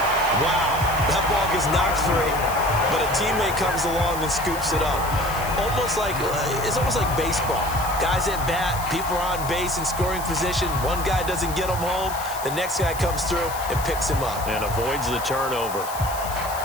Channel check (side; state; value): left; noise; hiss, 11 dB below the sound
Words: Wow, that ball gets knocked free, but a teammate comes along and scoops it up. It's almost like baseball. Guys at bat, people are on base in scoring position. One guy doesn't get him home. The next guy comes through and picks him up. And avoids the turnover.